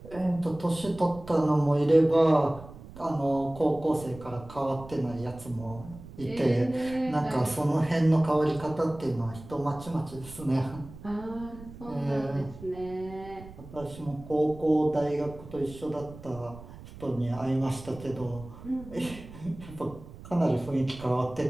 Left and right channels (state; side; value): noise; right; rumble, 16 dB below the sound